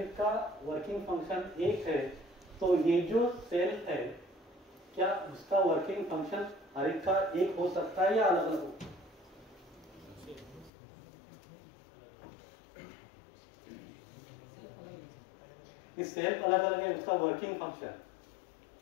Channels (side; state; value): right; drops out; at 10.7 s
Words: का वर्किंग फंक्शन एक है तो ये जो सेल है, क्या उसका वर्किंग फंक्शन हर एक का एक हो सकता है या अलग अलग हो? इस सेल अलग अलग है, उसका वर्किंग फंक्शन